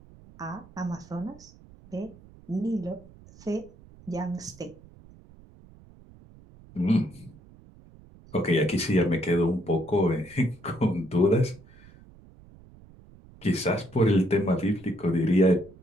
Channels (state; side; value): noise; right; rumble, 23 dB below the sound